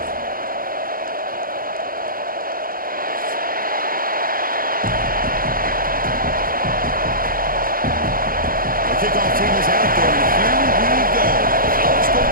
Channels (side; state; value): left; late; 0.42 ms